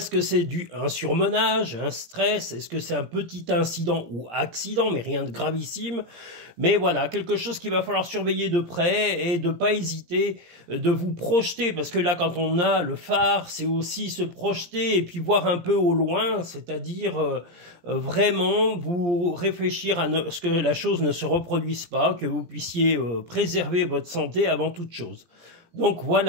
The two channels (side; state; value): left; late; 17 ms